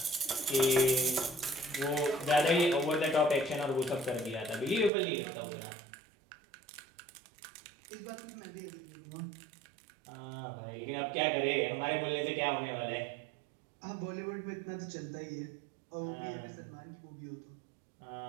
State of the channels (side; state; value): left; drops out; at 4.9 s